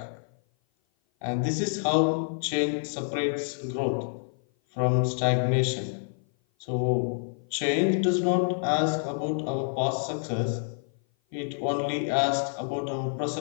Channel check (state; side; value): silent; right; 56 dB below the other